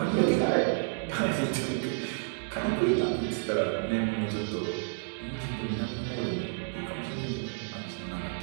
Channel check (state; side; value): silent; left; digital silence